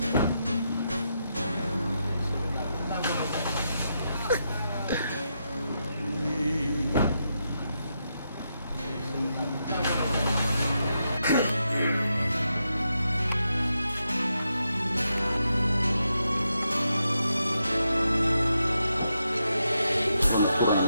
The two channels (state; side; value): inverted; both; correlation -0.83